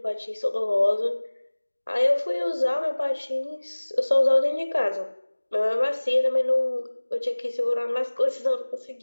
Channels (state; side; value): inverted; both; correlation -1.00